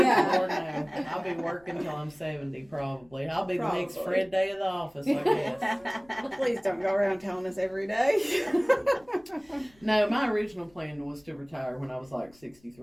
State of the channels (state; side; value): noise; left; rumble, 30 dB below the sound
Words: Lord, no. I'll be working till I'm 70 probably. I'll be the next Probably. Fred Day of the office, I guess. Please don't go around telling us every day. No, my original plan was to retire when I was like